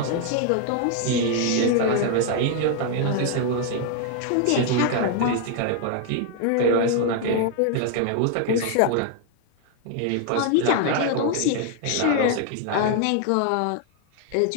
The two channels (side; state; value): both; different; correlation 0.00